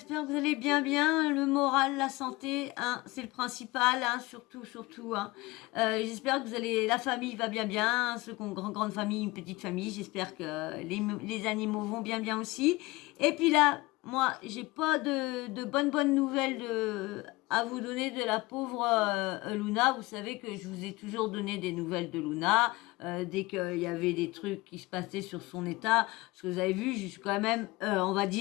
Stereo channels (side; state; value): right; quieter; 21.5 dB